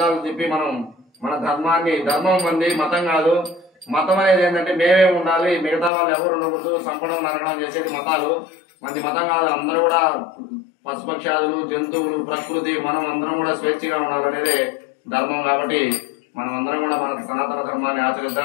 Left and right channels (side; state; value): right; drops out; at 5.9 s